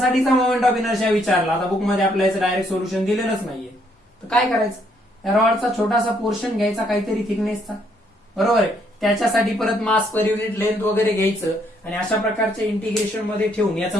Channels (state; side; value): normal; both; correlation 0.70